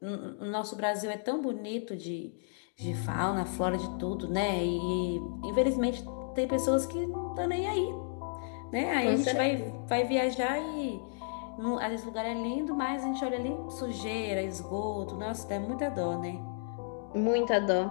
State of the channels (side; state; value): right; silent; digital silence